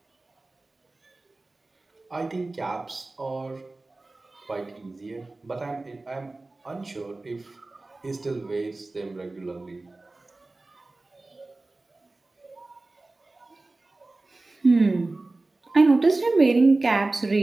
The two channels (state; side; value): quieter; left; 3.1 dB